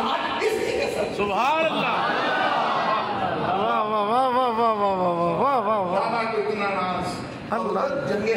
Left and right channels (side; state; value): both; identical; correlation 1.00